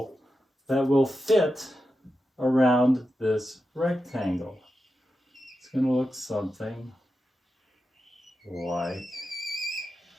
that will fit around this rectangle. It's going to look something like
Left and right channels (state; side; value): normal; both; correlation 0.90